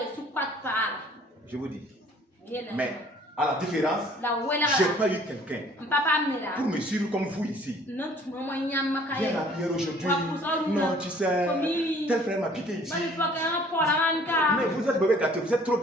Je vous dis. Mais à la différence, je n'ai pas eu quelqu'un pour me suivre comme vous ici. Viens à la prière aujourd'hui. Non, tu sais, tel frère m'a piqué ici. Mais vous êtes mauvais gâté, vous êtes trop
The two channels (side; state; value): both; normal; correlation 0.55